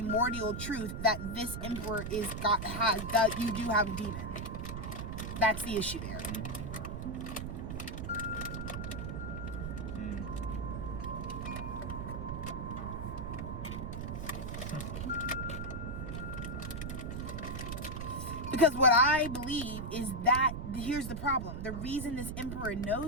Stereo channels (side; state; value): right; noise; rumble, 5 dB below the sound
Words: truth that this emperor that you do have a demon. That's the issue there. Because what I believe is that, here's the problem. The reason this emperor